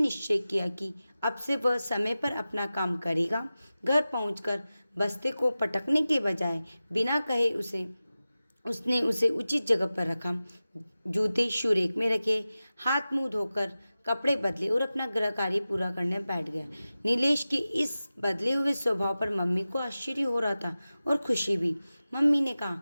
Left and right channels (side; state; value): both; inverted; correlation -0.95